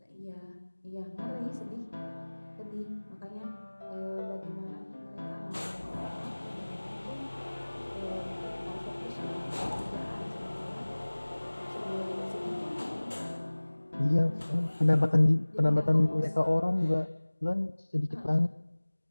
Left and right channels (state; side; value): inverted; both; correlation -1.00